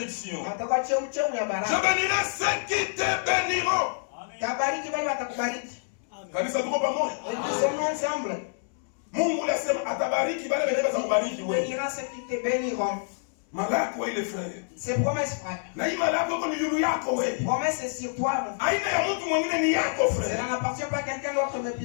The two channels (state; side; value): silent; right; 60 dB below the other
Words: Je bénirai ceux qui te béniront. Kanisa tuko pamoja. Mungu anasema atabariki wale watakaokubariki wewe. Malako ile frère. C'est promesse frère. Na hii malako kwa ndugu yako wewe. Promesse c'est sur toi. Aina ya mtu mwingine ni yako frère. Ça n'appartient pas à quelqu'un d'autre mais